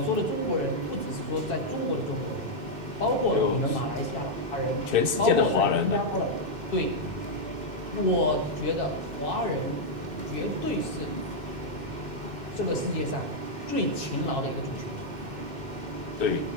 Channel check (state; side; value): late; left; 2.6 ms